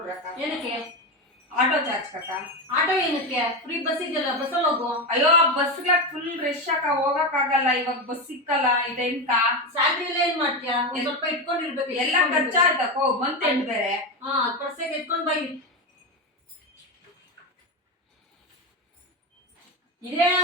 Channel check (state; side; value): normal; both; correlation 0.15